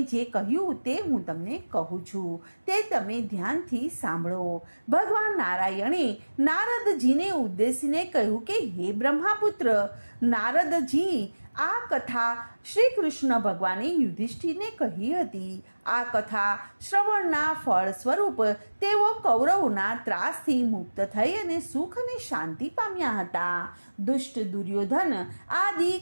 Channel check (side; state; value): both; inverted; correlation -1.00